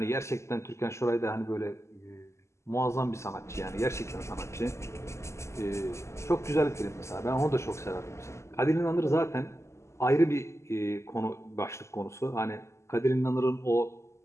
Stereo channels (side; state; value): right; late; 0.13 ms